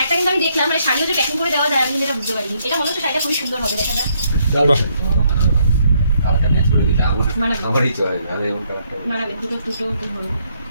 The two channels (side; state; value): both; inverted; correlation -0.71